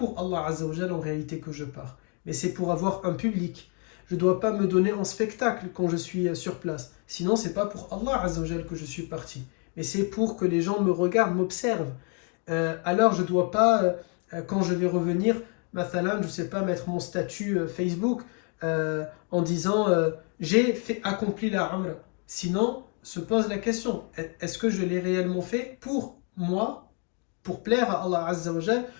Allah Azza wa Jal en réalité que je pars, mais c'est pour avoir un public. Je ne dois pas me donner en spectacle quand je suis sur place. Sinon, ce n'est pas pour Allah Azza wa Jal que je suis parti, mais c'est pour que les gens me regardent, m'observent. Alors, je ne dois pas, quand je vais revenir, mathalan, je ne sais pas, mettre mon statut Facebook en disant j'ai accompli la Umrah. Sinon, se pose la question, est-ce que je l'ai réellement fait pour moi, pour plaire à Allah Azza wa Jal,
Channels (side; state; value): right; quieter; 38.4 dB